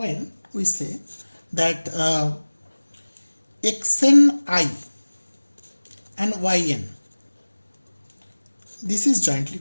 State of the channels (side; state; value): both; inverted; correlation -1.00